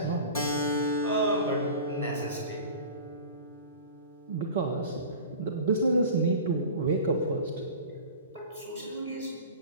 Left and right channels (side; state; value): both; inverted; correlation -0.37